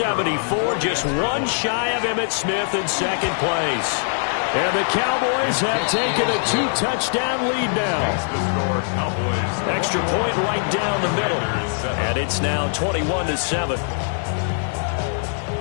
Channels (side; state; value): right; silent; digital silence